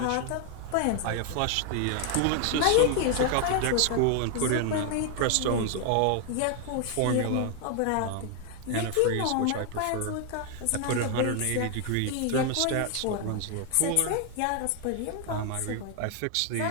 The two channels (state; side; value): different; both; correlation 0.00